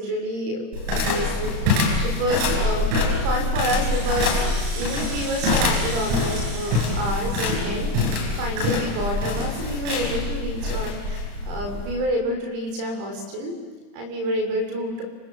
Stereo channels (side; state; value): left; late; 35 ms